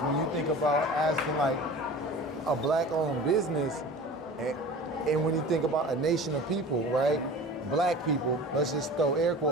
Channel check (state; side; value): normal; both; correlation 0.38